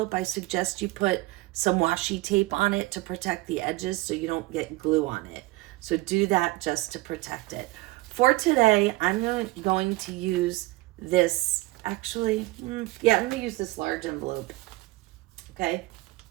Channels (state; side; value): quieter; left; 20.2 dB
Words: I suggest you put some washi tape on it to protect the edges so you don't get glue on it. So do that just to protect it. For today, I'm going to use this, I'm going to use this large envelope. Okay.